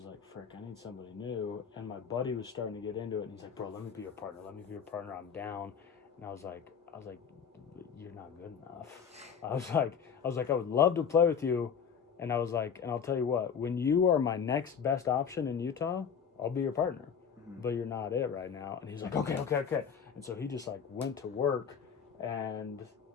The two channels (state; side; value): quieter; right; 7.0 dB